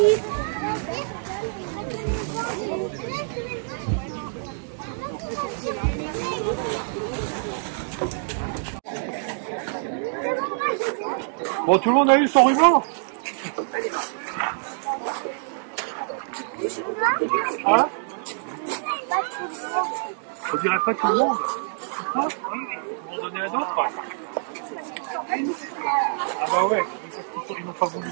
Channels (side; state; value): left; silent; digital silence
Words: Bon, tout le monde a eu son ruban? On dirait pas tout le monde. Ah, ils vont donner à d'autres. Ah bah ouais, ils n'ont pas voulu